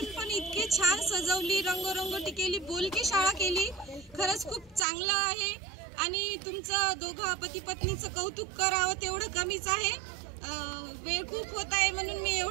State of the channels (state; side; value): drops out; left; at 4.9 s